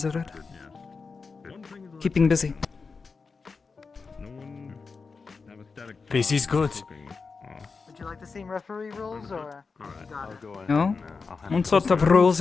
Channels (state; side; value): quieter; right; 4.7 dB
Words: Keeping busy. Busy's good. Would you like the same referee rules, or you got it? No? What sort of rules